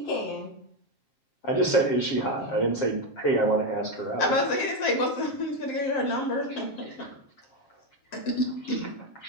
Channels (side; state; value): right; late; 7.4 ms